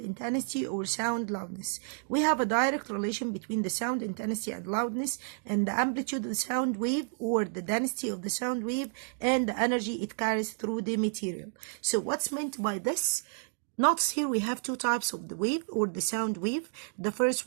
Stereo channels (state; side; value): silent; left; digital silence